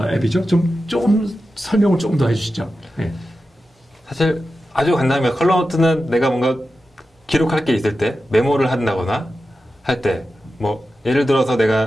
앱이죠? 조금 설명을 조금 더 해주시죠. 예. 사실 아주 간단합니다. 컬러노트는 내가 뭔가 기록할 게 있을 때 메모를 한다거나 할 때 뭐 예를 들어서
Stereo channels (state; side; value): normal; both; correlation 0.92